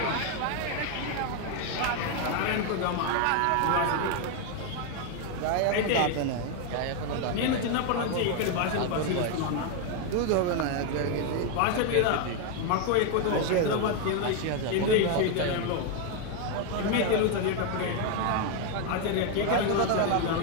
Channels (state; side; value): different; both; correlation 0.01